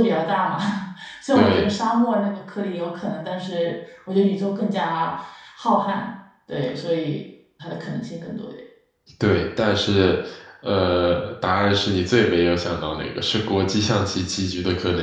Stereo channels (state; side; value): identical; both; correlation 1.00